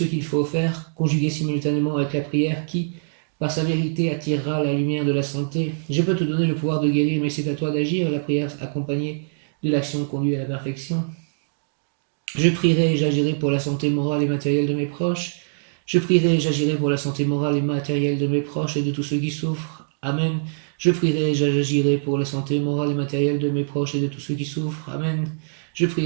qu'il faut faire, conjugué simultanément avec la prière qui, par sa vérité, attirera la lumière de la santé. Je peux te donner le pouvoir de guérir, mais c'est à toi d'agir. La prière accompagnée de l'action conduit à la perfection. Je prierai et j'agirai pour la santé morale et matérielle de mes proches. Je prierai et j'agirai pour la santé morale et matérielle de mes proches et de tous ceux qui souffrent. Amen. Je prierai et j'agirai pour la santé morale et matérielle de mes proches et de tous ceux qui souffrent. Amen. Je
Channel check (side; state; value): left; silent; digital silence